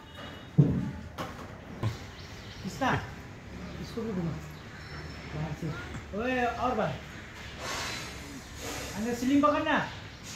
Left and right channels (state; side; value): identical; both; correlation 1.00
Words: और बार आणि स्लिंग पकड ना.